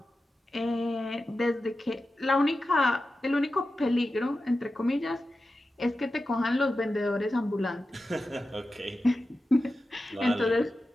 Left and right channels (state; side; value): normal; both; correlation 0.93